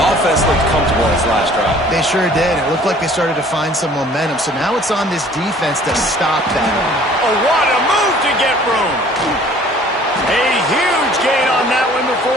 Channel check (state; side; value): normal; both; correlation 0.53